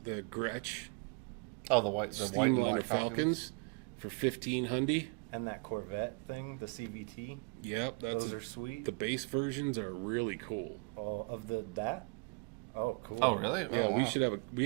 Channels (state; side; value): quieter; left; 32.9 dB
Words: Gretsch Oh, the white and Steamliner black Falcons. for 1500. And that Corvette thing, the CVT. Yep, Those are sweet. the base versions are really cool. Oh, of that? Oh, cool. Oh, really? Yeah, Oh, we wow. should have we